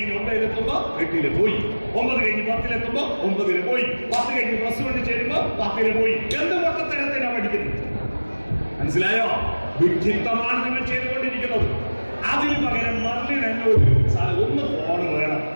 9-ലെത്തുമ്പോ 8-ല് പോയി, 9 കഴിഞ്ഞ് 10-ലെത്തുമ്പോ 9-ല് പോയി, 10 കഴിഞ്ഞ് +1 ചേരുമ്പോ 10-ല് പോയി. എന്ത് പൊട്ടത്തരത്തിനാ പഠിക്കുന്നത്? മനസ്സിലായോ? വിഡ്ഢിത്തമാണ് നിങ്ങൾ ചെയ്തുകൊണ്ടിരിക്കുന്നത്. അതിന് പകരം മെർലിൻ എന്നോട് ഒന്ന് ഫോൺ വേണം,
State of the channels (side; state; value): both; inverted; correlation -1.00